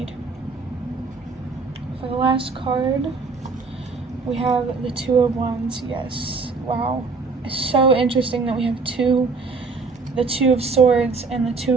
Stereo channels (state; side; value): quieter; left; 4.3 dB